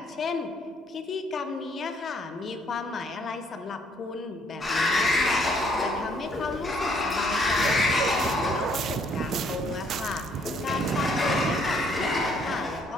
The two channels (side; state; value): both; normal; correlation 0.66